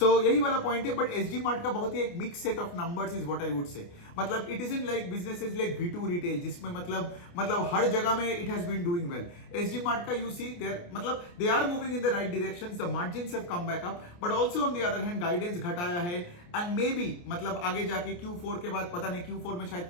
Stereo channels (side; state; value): right; late; 29 ms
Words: यही वाला पॉइंट है। बट SG Mart का बहुत ही एक mix set of numbers is what I would say, मतलब it is in like businesses like V2 retail, जिसमें मतलब हर जगह में it has been doing well. SG Mart का यू सी देयर, मतलब they are moving in the right direction, the margins have come back up, but also on the other hand guidance guidance घटाया है and may be मतलब आगे जाके Q4 के बाद पता नहीं Q4 में शायद